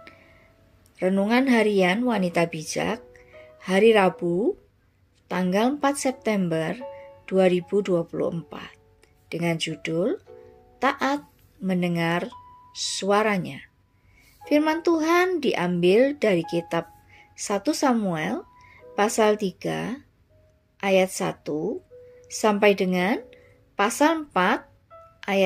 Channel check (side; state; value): both; identical; correlation 1.00